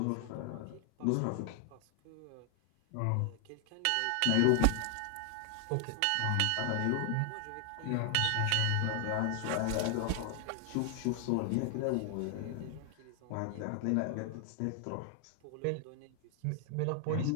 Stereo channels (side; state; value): both; different; correlation 0.00